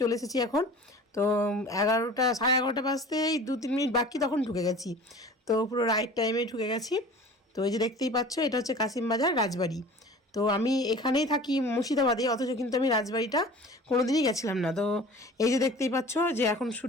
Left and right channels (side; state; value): both; normal; correlation 0.42